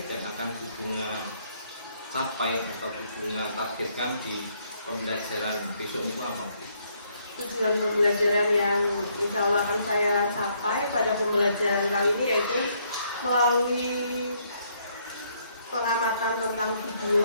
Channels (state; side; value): inverted; both; correlation -0.70